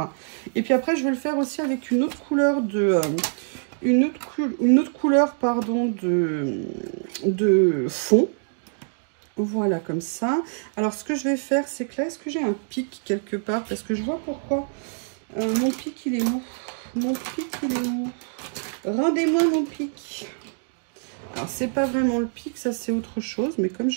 Et puis après, je vais le faire aussi avec une autre couleur de... une autre couleur, pardon, de fond. Voilà, comme ça. Alors, ce que je vais faire, c'est que là, est-ce que j'ai un pic quelque part? Parce que je vois pourquoi. Mon pic, il est où? Mon pic, il est où? Rendez-moi mon pic. Alors, c'est pas vraiment le pic, ça, c'est autre chose. Mais comme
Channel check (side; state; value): left; silent; 62 dB below the other